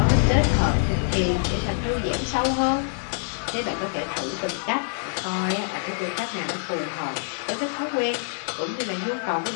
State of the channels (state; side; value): silent; right; 62 dB below the other